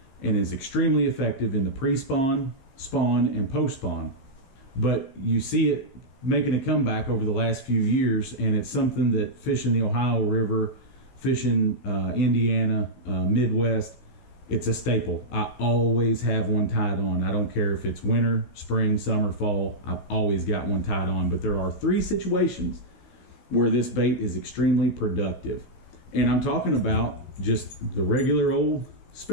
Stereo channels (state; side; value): late; right; 15 ms